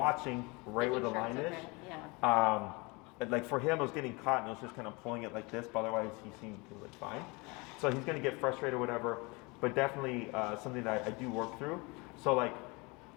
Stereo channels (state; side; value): quieter; right; 27.0 dB